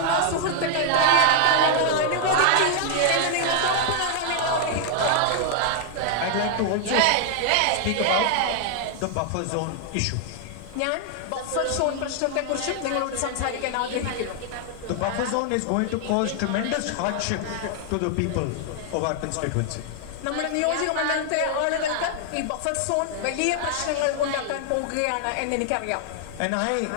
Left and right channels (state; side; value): different; both; correlation 0.00